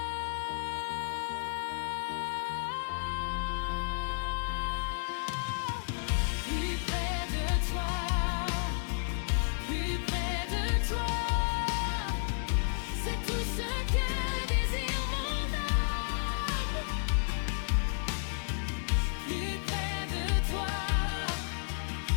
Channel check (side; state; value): right; silent; digital silence